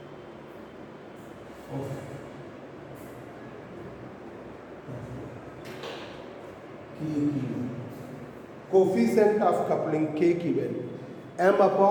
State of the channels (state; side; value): identical; both; correlation 1.00